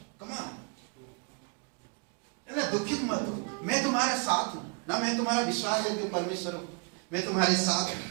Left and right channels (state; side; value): quieter; left; 35.0 dB